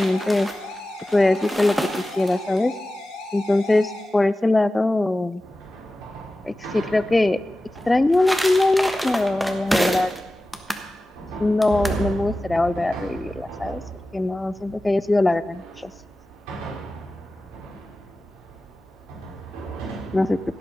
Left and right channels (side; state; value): both; normal; correlation 0.95